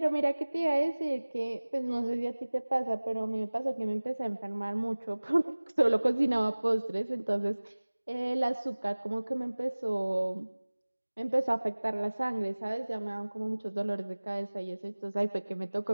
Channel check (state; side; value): inverted; both; correlation -1.00